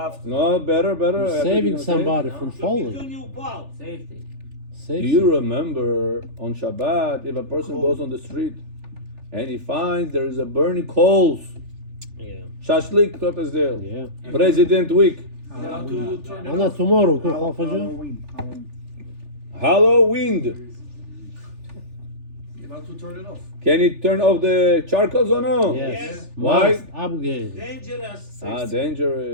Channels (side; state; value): left; late; 3.4 ms